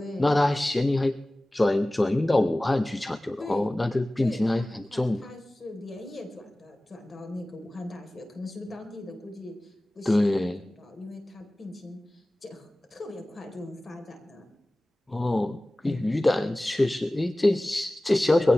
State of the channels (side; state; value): both; normal; correlation 0.98